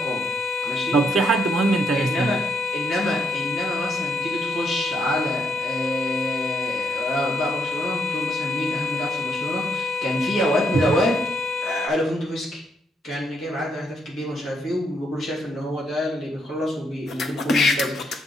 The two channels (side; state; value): both; normal; correlation 0.75